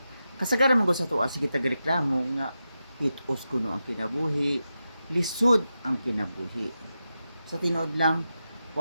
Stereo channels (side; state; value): both; inverted; correlation -0.90